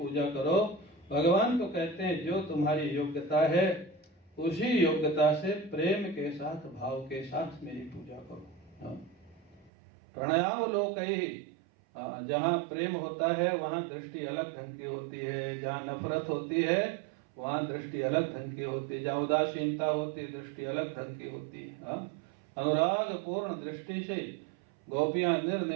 करो। भगवान को कहते हैं जो तुम्हारी योग्यता है उसी योग्यता से प्रेम के साथ, भाव के साथ मेरी पूजा करो। हाँ, प्रणयावलोकैः, जहाँ प्रेम होता है वहां दृष्टि अलग ढंग की होती है, जहाँ नफरत होती है वहां दृष्टि अलग ढंग की होती है, जहाँ उदासीनता होती है दृष्टि अलग ढंग की होती है। अनुराग पूर्ण दृष्टि से गोपियां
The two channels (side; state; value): left; drops out; at 9.7 s